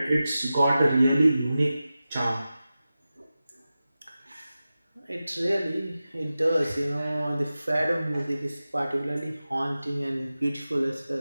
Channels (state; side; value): inverted; both; correlation -0.94